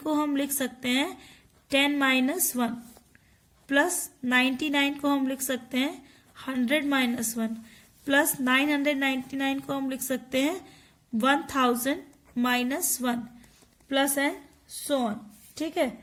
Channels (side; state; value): both; identical; correlation 1.00